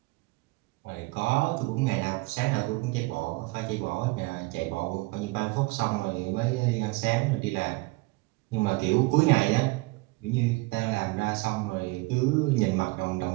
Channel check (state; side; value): quieter; left; 23.8 dB